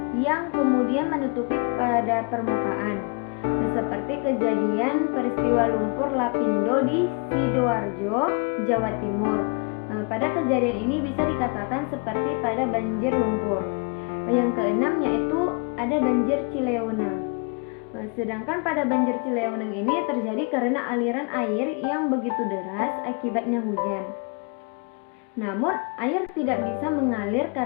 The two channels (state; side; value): quieter; right; 34.9 dB